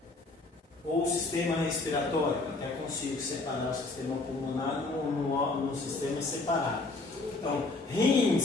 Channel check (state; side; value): quieter; right; 3.4 dB